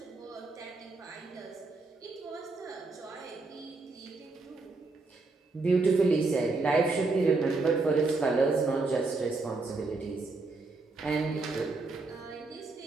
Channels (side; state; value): left; quieter; 3.6 dB